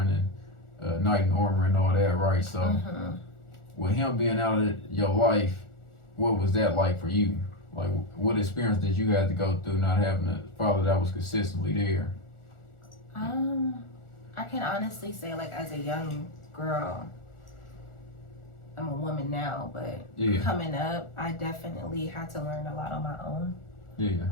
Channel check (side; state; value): right; late; 1.4 ms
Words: knight in armor and all that, right? So with him being out of your life, what was that like for you? Like, what experience did you have to go through not having a father that was consistently there? I can honestly say, like, as a young girl, I'm a woman now, but coming up, I definitely had to learn a lot on my own.